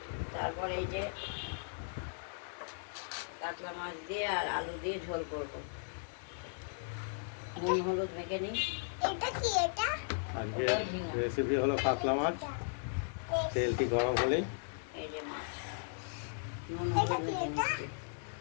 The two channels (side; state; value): right; silent; digital silence